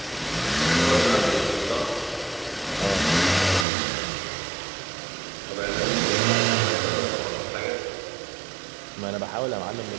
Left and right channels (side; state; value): left; drops out; at 3.7 s